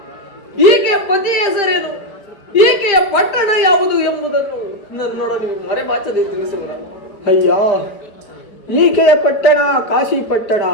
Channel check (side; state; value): right; late; 5.0 ms